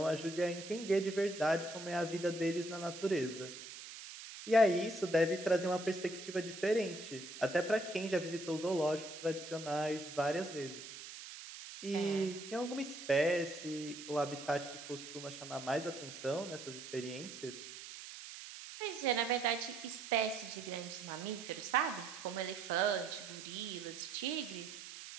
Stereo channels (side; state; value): right; noise; hiss, 12 dB below the sound